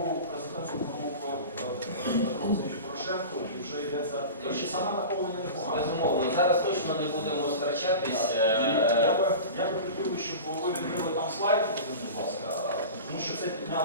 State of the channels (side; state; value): both; inverted; correlation -0.33